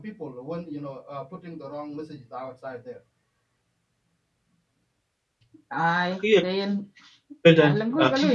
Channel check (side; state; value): both; identical; correlation 1.00